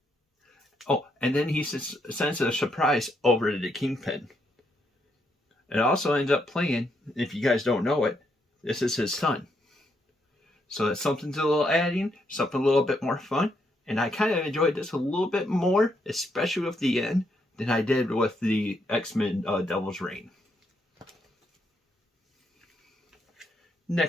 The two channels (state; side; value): normal; both; correlation 0.77